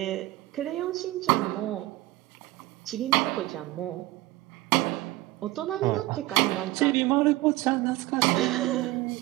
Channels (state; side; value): quieter; left; 18.4 dB